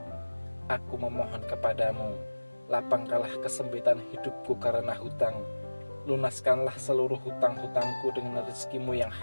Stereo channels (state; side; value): inverted; both; correlation -1.00